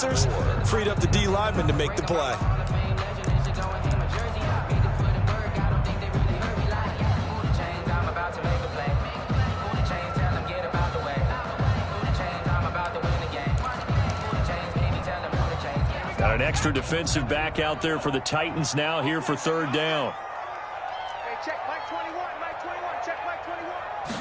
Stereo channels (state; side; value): identical; both; correlation 1.00